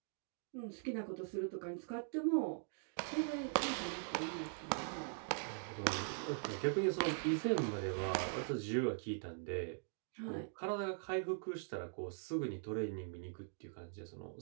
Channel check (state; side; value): silent; left; digital silence